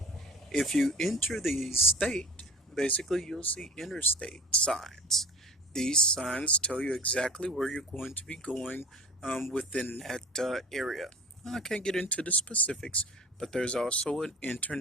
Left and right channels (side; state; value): both; normal; correlation 0.39